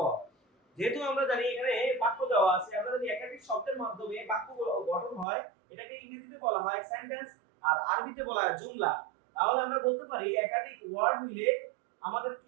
যেহেতু আমরা জানি এখানে বাক্য দেওয়া আছে, আমরা যদি একাধিক শব্দের মাধ্যমে বাক্য গঠন হয়, এটাকে ইংরেজিতে বলা হয় সেন্টেন্স আর আরবিতে বলা হয় জুমলা। তাহলে আমরা বলতে পারি একাধিক ওয়ার্ড মিলে আমাদের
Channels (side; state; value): left; drops out; at 5.2 s